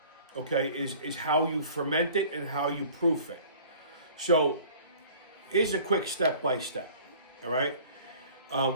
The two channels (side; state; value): both; inverted; correlation -0.47